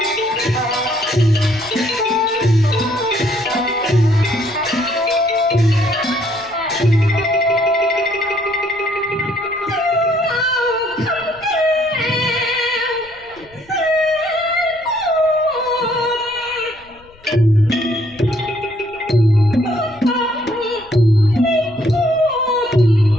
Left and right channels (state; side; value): noise; left; rumble, 27 dB below the sound